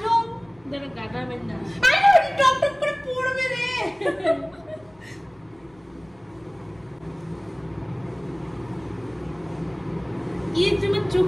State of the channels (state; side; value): noise; left; rumble, 30 dB below the sound